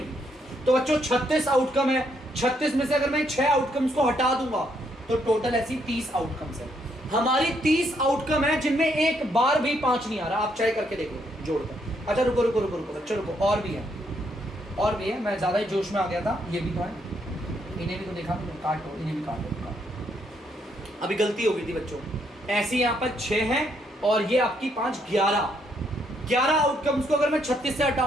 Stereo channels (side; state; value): both; normal; correlation 0.74